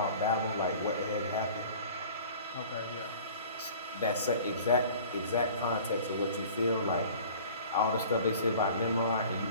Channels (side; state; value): both; inverted; correlation -0.45